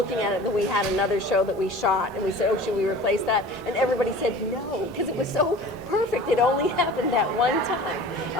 at it, that we had another show that we shot, and we said, should we replace that? And everybody said no, because it was so perfect. It only happened that one time.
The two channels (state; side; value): normal; both; correlation 0.41